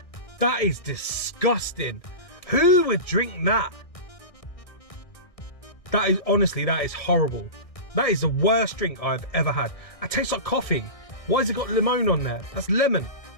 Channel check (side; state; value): right; late; 1.6 ms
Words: That is disgusting. Who would drink that? That is, honestly, that is horrible. That is the worst drink I've ever had. It tastes like coffee. Why has it got lemon on there? That's lemon.